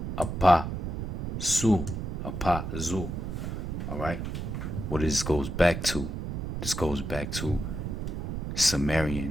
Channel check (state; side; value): noise; right; rumble, 4 dB below the sound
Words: apazu. All right? What this goes back to? This goes back to